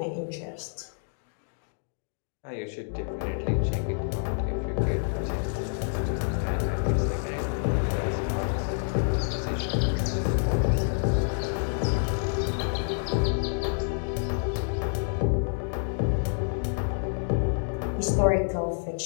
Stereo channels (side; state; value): right; silent; digital silence